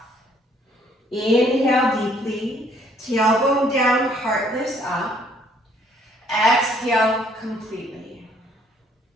Inhale deeply, tailbone down, heart lifts up. Exhale completely.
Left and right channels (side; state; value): both; normal; correlation 0.63